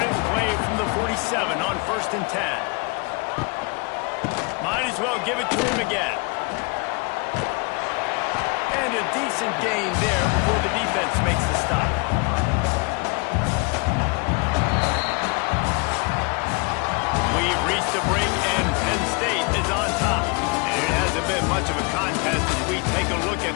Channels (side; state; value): right; quieter; 30.2 dB